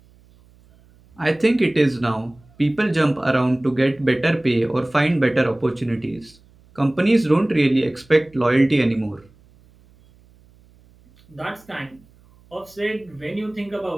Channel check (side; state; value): right; noise; hum, 29 dB below the sound